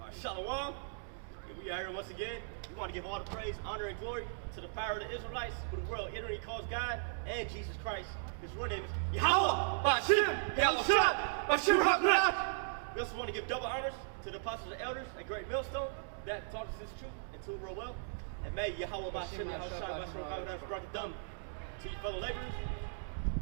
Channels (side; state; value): left; silent; digital silence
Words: right. Shalom. We are here once again. We want to give all the praise, honor, and glory to the power of the Israelites, who the world ignorantly calls God, and Jesus Christ. His real name is Yahweh Bashim Yahushua Bashim HaKadosh. We also want to give double honors to the apostles and elders at Great Millstone that taught us this truth and to real well. And may Yahweh Bashim Yahushua Bashim HaKadosh brought the dumb to you fellow laborers,